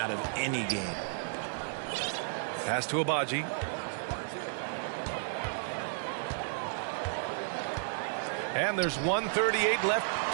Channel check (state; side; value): silent; left; 56 dB below the other